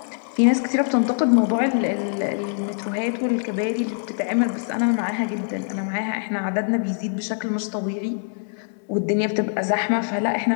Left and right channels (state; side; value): silent; right; 63 dB below the other